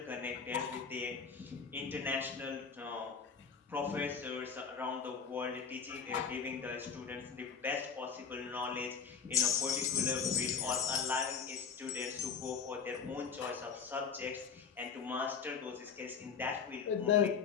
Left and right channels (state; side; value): quieter; right; 6.1 dB